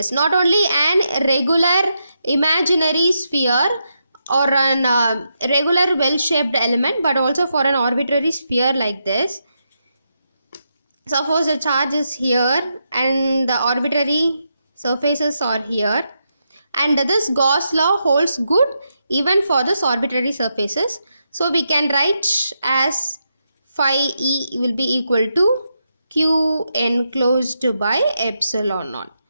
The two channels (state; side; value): inverted; both; correlation -0.83